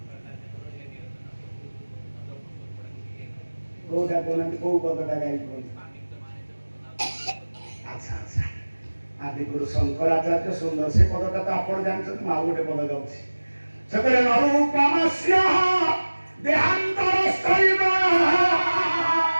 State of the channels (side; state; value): both; inverted; correlation -1.00